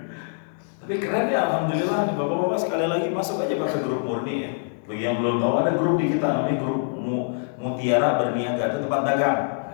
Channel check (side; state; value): right; silent; digital silence